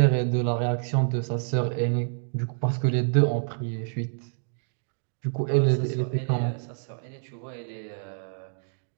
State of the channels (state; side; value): silent; left; digital silence